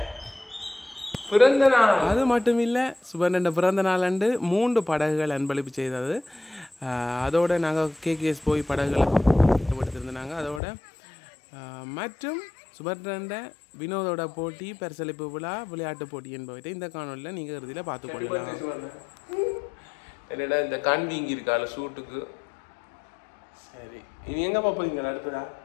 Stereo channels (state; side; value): drops out; right; at 10.6 s